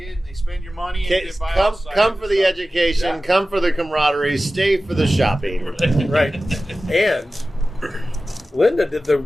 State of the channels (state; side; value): normal; both; correlation 0.95